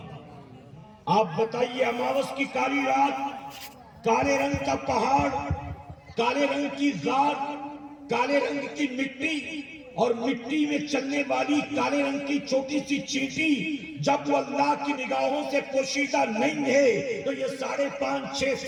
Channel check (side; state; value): both; identical; correlation 1.00